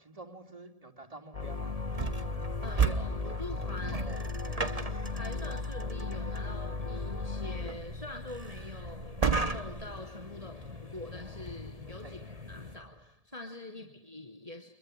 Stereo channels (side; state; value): left; late; 1.7 ms